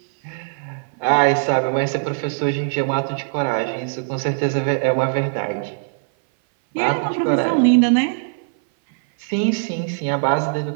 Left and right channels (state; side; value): silent; left; 58 dB below the other